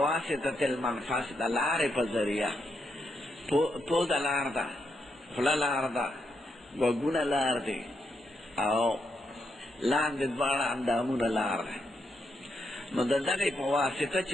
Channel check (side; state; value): both; normal; correlation 0.81